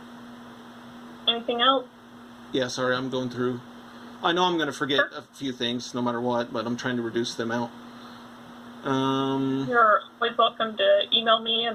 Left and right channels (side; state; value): both; identical; correlation 1.00